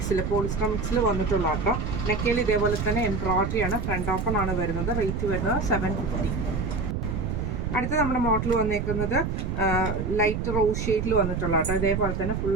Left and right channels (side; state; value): right; noise; rumble, 2 dB below the sound